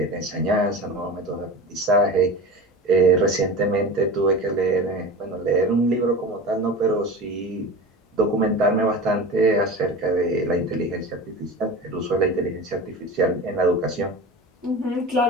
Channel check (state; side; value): normal; both; correlation 0.31